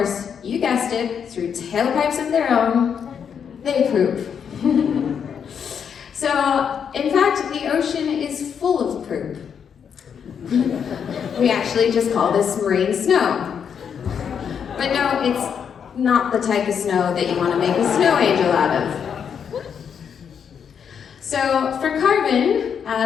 you guessed it, through tailpipes of their own, they poop. So, in fact, the ocean is full of poop. We actually just call this marine snow. But no, it's not the type of snow that you want to make a snow angel out of. So for carbon,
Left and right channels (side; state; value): right; quieter; 7.4 dB